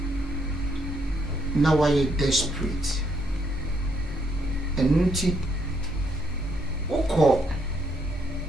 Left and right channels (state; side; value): normal; both; correlation 0.73